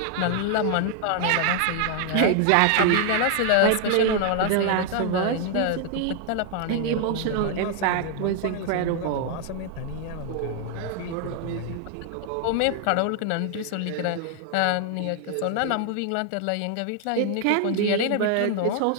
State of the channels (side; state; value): both; different; correlation 0.00